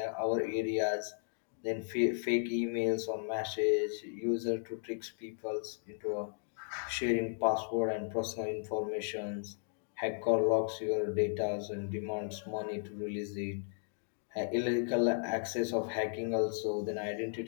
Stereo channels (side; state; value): right; silent; digital silence